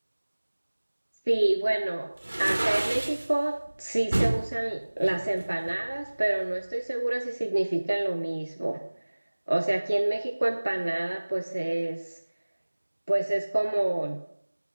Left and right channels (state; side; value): inverted; both; correlation -1.00